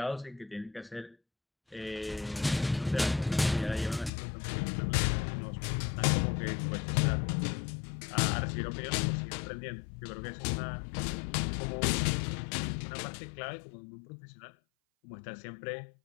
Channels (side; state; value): right; drops out; at 4.1 s